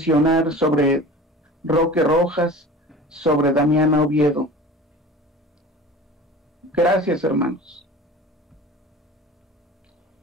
sobre Roque Rojas, sobre Damiana Oviedo. Gracias, hermanos.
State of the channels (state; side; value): normal; both; correlation 0.38